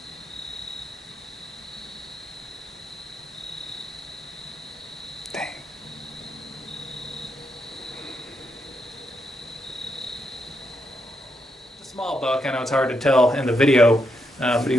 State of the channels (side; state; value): both; normal; correlation 0.81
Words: Dang. It's a small buck, I know it's hard to tell in the video, but